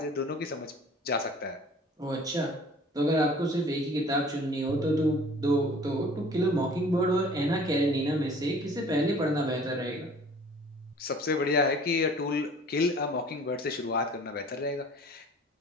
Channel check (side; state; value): both; normal; correlation 0.49